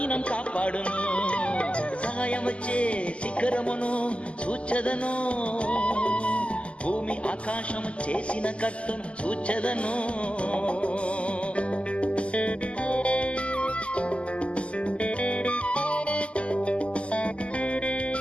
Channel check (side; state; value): right; late; 0.056 ms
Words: కాపాడును. సహాయం వచ్చే శిఖరమును చూచెదను, భూమి ఆకాశము చేసిన కర్తను చూచెదను.